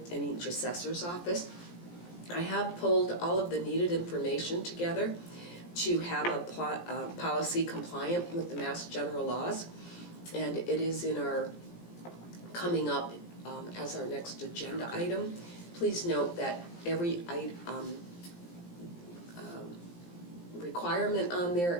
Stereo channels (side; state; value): right; late; 17 ms